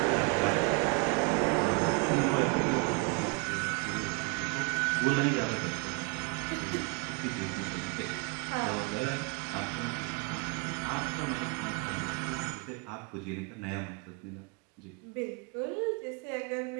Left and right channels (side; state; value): left; quieter; 30.5 dB